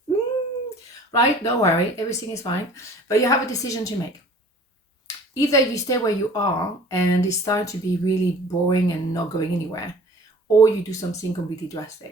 Right? Don't worry, everything is fine. But you have a decision to make. Either you stay where you are and it's starting to be really boring and not going anywhere, or you do something completely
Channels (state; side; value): normal; both; correlation 0.47